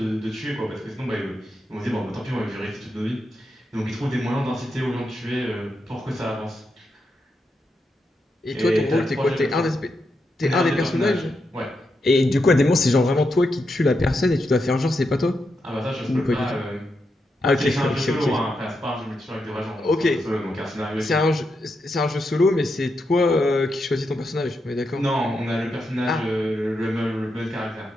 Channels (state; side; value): normal; both; correlation 0.84